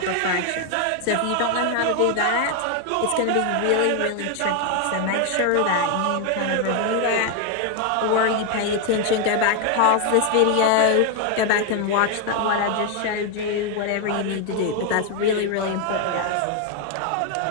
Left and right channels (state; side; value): different; both; correlation 0.01